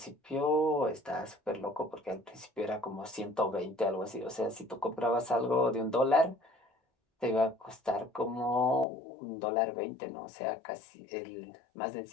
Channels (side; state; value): right; drops out; at 8.8 s